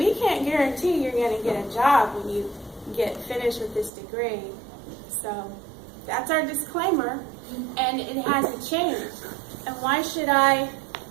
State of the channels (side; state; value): left; drops out; at 3.9 s